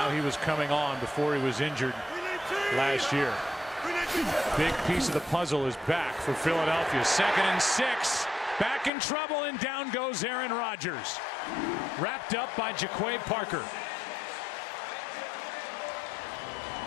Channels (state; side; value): drops out; right; at 8.9 s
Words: he was coming on before he was injured last year. Big piece of the puzzle is back for Philadelphia. 2nd and 6. Back in trouble, and down goes Aaron Rodgers. Wrapped up by Jaquay Parker.